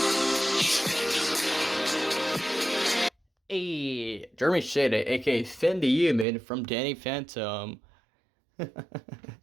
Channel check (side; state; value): left; drops out; at 6.2 s